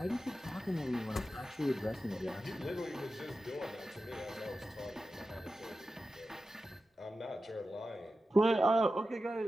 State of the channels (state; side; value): normal; both; correlation 0.93